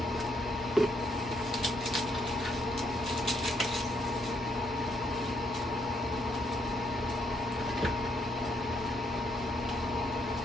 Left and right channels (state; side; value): normal; both; correlation 0.73